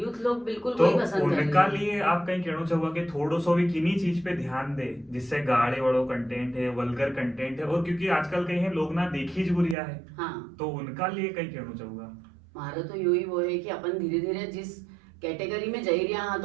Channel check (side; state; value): left; drops out; at 9.8 s